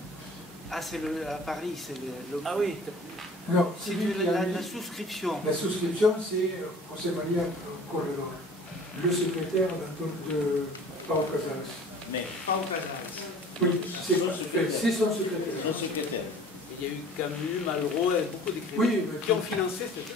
Ah, c'est à Paris, c'est le... Ah oui, Non, C'est celui qui a mis- la souscription. La souscription, c'est José María Corredor, le secrétaire de Pau Casals. Mais Pas au Casals. Oui, c'est Son secrétaire. c'est son secrétaire. son secrétaire. il y a eu Camus, Malraux, et beaucoup d'écrivains Oui, mais- qui ont financé cette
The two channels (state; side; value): normal; both; correlation 0.47